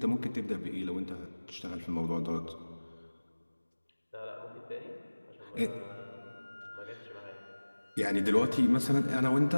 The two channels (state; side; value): inverted; both; correlation -1.00